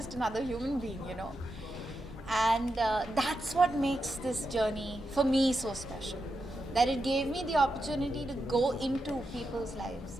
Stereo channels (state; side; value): normal; both; correlation 0.87